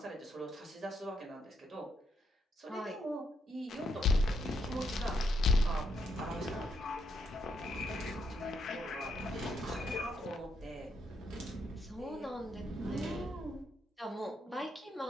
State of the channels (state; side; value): normal; both; correlation 0.76